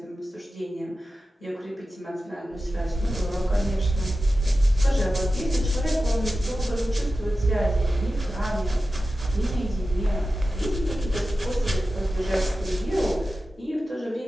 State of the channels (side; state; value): both; normal; correlation 0.93